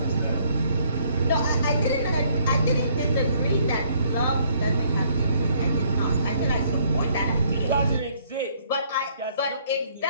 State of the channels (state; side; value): inverted; both; correlation -0.65